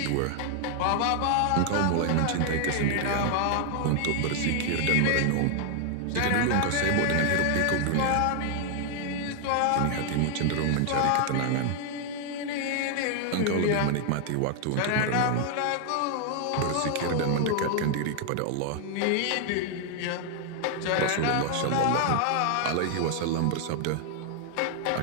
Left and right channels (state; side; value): different; both; correlation 0.00